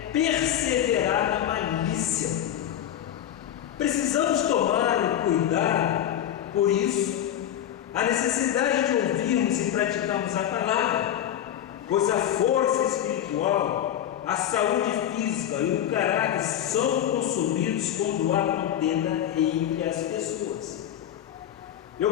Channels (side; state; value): right; quieter; 10.9 dB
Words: perseverar na malícia. Precisamos tomar cuidado, por isso, a necessidade de ouvirmos e praticarmos a palavra, pois a força espiritual, a saúde física e o caráter são consumidos quando há contenda entre as pessoas.